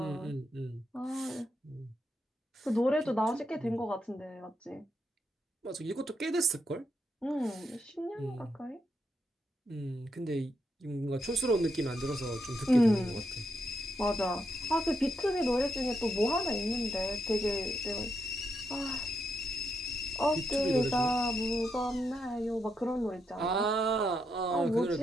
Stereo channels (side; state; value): both; normal; correlation 0.81